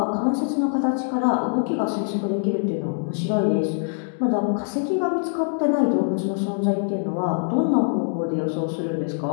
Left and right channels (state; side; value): silent; right; digital silence